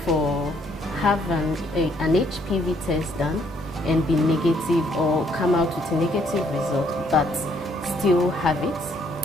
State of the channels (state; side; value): normal; both; correlation 0.68